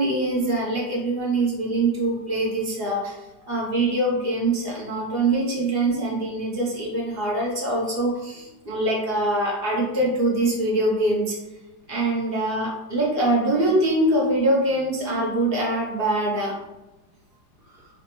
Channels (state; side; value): late; right; 4.8 ms